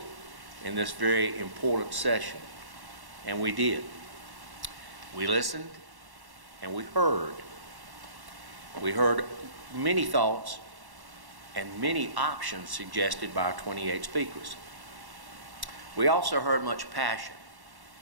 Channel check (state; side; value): late; left; 1.1 ms